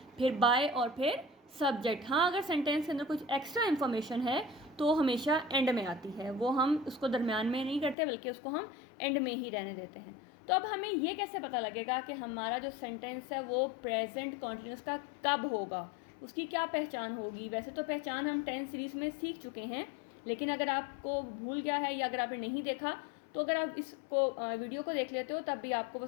फिर बाय और फिर सब्जेक्ट। हाँ, अगर सेंटेंस के अंदर कुछ एक्स्ट्रा इन्फॉर्मेशन है तो हमेशा एंड में आती है, वो हम उसको दरमियान में नहीं करते बल्कि उसको हम एंड में ही रहने देते हैं। तो अब हमें ये कैसे पता लगेगा कि हमारा जो सेंटेंस है वो प्रेजेंट कॉन्टिन्यूस का कब होगा, उसकी क्या पहचान होगी? वैसे तो पहचान हम 10 सीरीज़ में सीख चुके हैं, लेकिन अगर आपको भूल गया है या अगर आपने नहीं देखा तो अगर आप इसको वीडियो को देख लेते हो तब भी आपको वो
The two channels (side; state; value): right; drops out; at 8.0 s